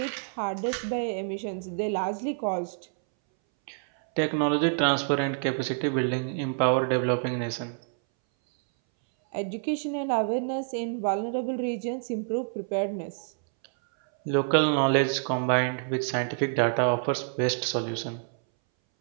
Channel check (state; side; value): silent; left; 60 dB below the other